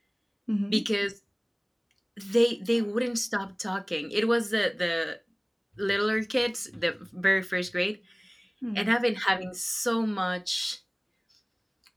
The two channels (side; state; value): both; identical; correlation 1.00